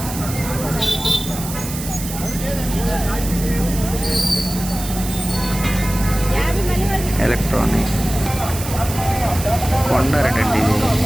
ఎలక్ట్రానిక్, కొండారటండి ఇది,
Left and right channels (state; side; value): noise; right; hiss, 9 dB below the sound